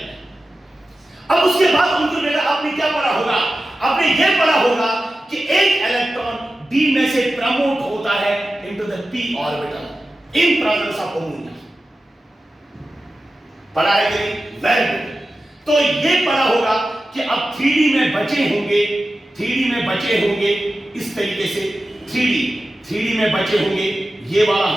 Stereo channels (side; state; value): both; normal; correlation 0.93